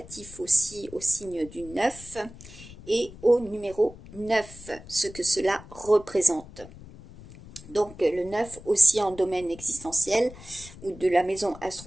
aussi au signe du 9 et au numéro 9, ce que cela représente. Donc le 9 aussi en domaine existentiel ou de la maison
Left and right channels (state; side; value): noise; left; rumble, 18 dB below the sound